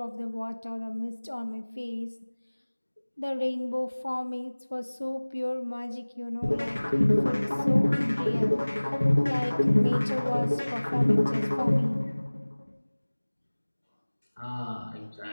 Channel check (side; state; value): both; inverted; correlation -1.00